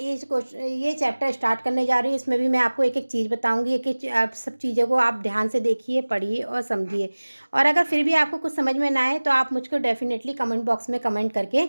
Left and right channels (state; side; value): inverted; both; correlation -1.00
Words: चैप्टर स्टार्ट करने जा रही हूँ। इसमें भी मैं आपको एक एक चीज़ बताऊंगी। एक एक आप सब चीज़ों को आप ध्यान से देखिए, पढ़िए और समझिए। और अगर फिर भी आपको कुछ समझ में ना आए तो आप मुझको डेफिनेटली कमेंट बॉक्स में कमेंट करके